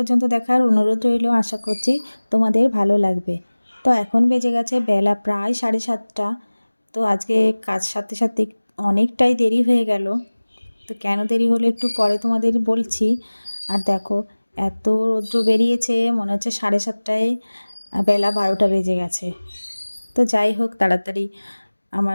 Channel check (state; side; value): inverted; both; correlation -1.00